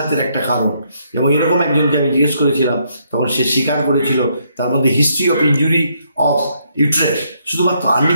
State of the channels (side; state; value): both; inverted; correlation -0.73